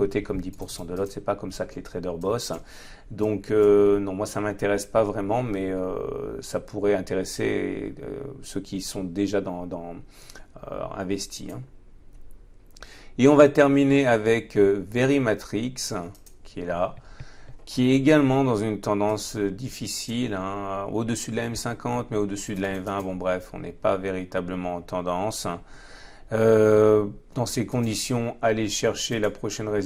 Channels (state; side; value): identical; both; correlation 1.00